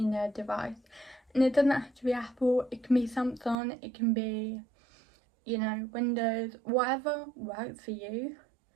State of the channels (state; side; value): drops out; left; at 3.6 s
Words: device, and it doesn't have to be Apple, it can be Samsung, it can be, you know, Windows, whatever works for you.